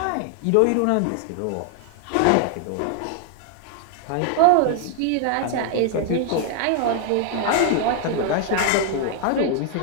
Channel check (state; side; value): different; both; correlation 0.00